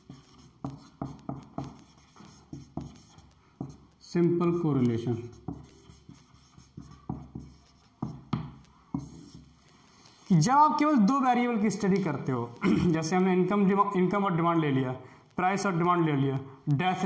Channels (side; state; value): both; identical; correlation 1.00